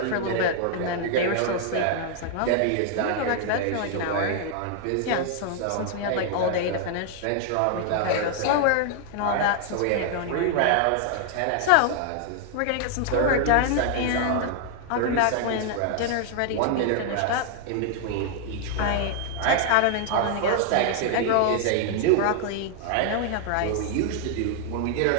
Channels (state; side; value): different; both; correlation 0.00